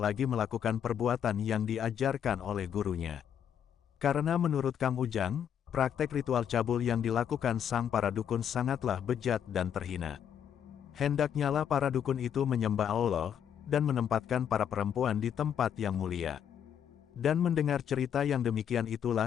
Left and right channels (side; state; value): right; quieter; 8.8 dB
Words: melakukan perbuatan yang diajarkan oleh gurunya. Karena menurut Kang Ujang, praktek ritual cabul yang dilakukan sang para dukun sangatlah bejat dan terhina. Hendaknyalah para dukun itu menyembah Allah, dan menempatkan para perempuan di tempat yang mulia. Dan mendengar cerita yang demikian